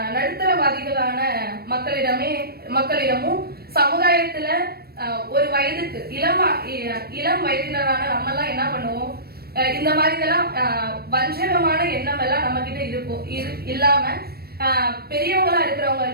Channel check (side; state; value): left; late; 0.45 ms